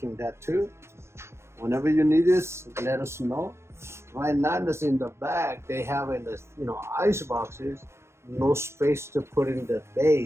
that too. Whenever you need this, let us know. Right now, this in the back, they have in the ice boxes, no space to put in the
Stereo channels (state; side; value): late; left; 0.13 ms